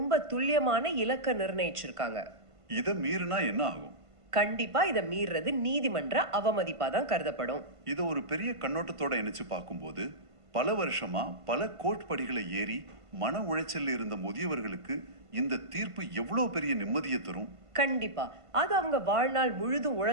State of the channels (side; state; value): left; late; 1.5 ms